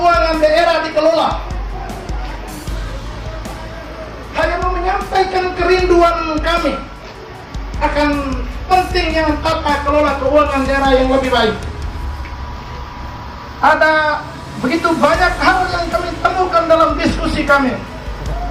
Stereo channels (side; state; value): both; identical; correlation 1.00